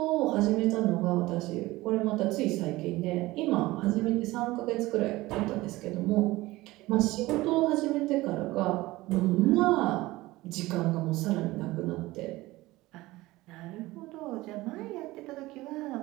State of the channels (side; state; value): left; quieter; 19.1 dB